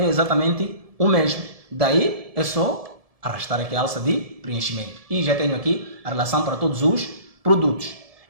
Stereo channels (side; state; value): left; late; 1.7 ms